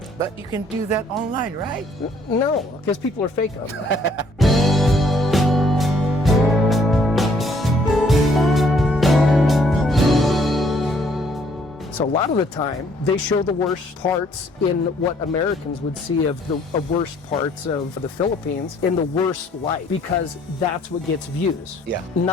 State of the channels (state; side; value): normal; both; correlation 0.63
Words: But you can do that online, right? No, because people are fake on that. So a lot of the time, they show the worst parts in what Americans would see of the worst parts of the Philippines in the worst light, because that's what gets views. Yeah.